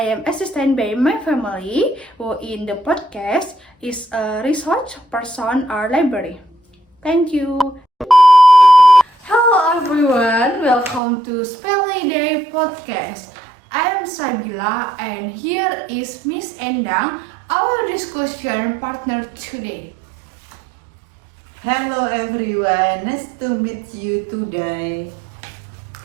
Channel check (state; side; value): drops out; left; at 11.0 s